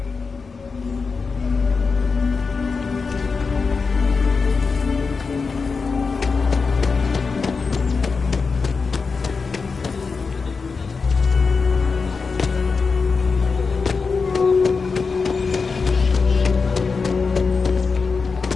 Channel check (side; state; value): right; quieter; 4.8 dB